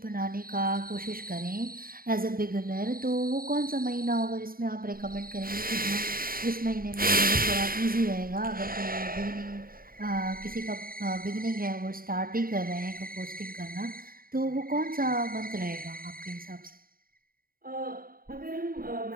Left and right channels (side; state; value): left; late; 0.42 ms